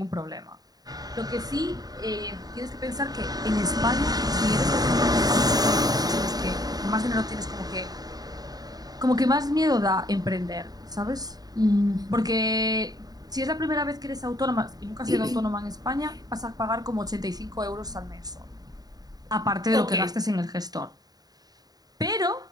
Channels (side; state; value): left; late; 0.19 ms